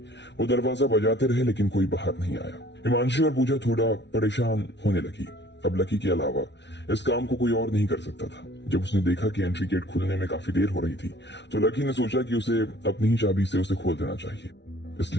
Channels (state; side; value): late; right; 0.51 ms